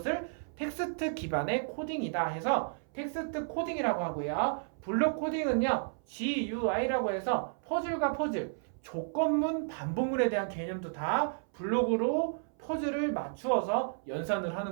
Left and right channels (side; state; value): left; silent; 56 dB below the other